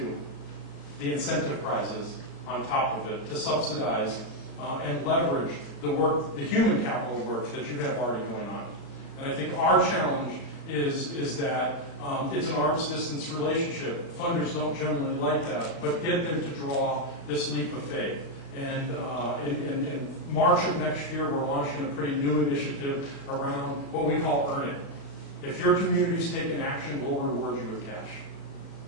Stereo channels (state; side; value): late; right; 35 ms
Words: the incentive prizes on top of it to subsidize and leverage the work, the human capital work that you have already going on. And I think our challenge is that it's an arm's distance relationship. Funders don't generally like that, but get them to draw this leap of faith. And in March of next year, we're launching a pretty new initiative around what we call Earn It. If your community's taken action, we'll reward you with cash.